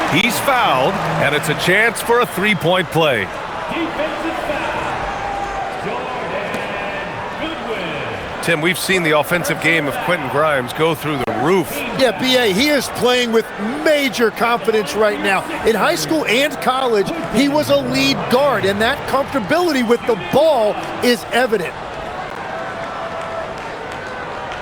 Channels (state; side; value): identical; both; correlation 1.00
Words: He's fouled, and it's a chance for a three-point play. Tim, we've seen the offensive game of Quentin Grimes go through the roof. Yeah, B.A., he is playing with major confidence right now. In high school and college, he was a lead guard, and that comfortability with the ball is evident.